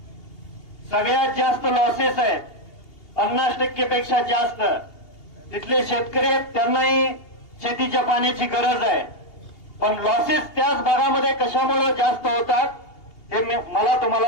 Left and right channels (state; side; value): late; right; 2.8 ms